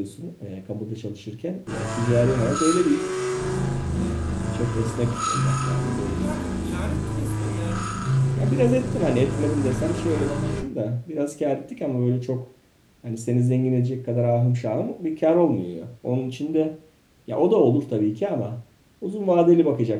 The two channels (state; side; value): identical; both; correlation 1.00